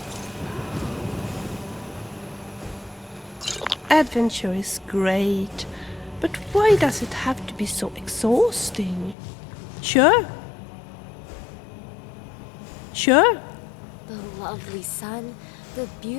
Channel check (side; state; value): right; drops out; at 9.2 s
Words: Adventure is great, but why does it have to be so exhausting? Sure. Sure. The lovely sun, the